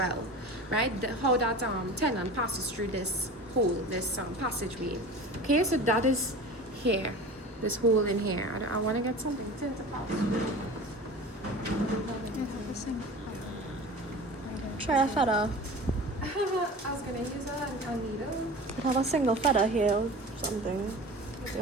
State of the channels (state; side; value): normal; both; correlation 0.36